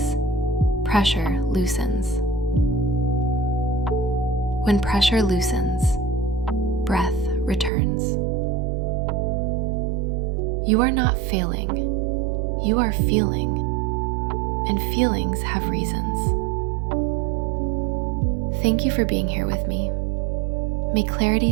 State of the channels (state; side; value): drops out; left; at 7.7 s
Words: pressure loosens. When pressure loosens, breath returns. You are not failing, you are feeling, and feelings have reasons. Thank you for being here with me. May